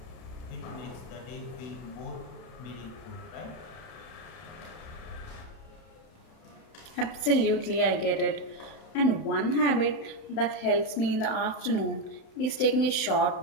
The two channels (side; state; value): right; late; 31 ms